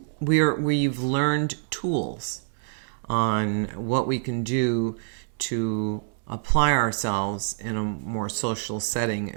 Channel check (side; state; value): left; silent; digital silence